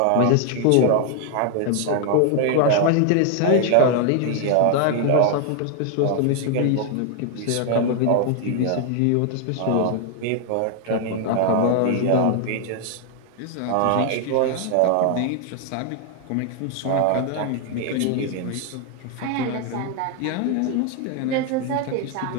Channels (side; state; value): both; different; correlation 0.00